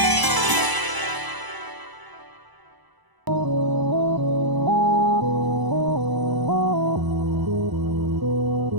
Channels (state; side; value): late; left; 1.0 ms